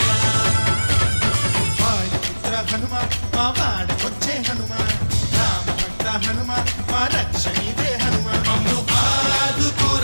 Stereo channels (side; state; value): both; inverted; correlation -1.00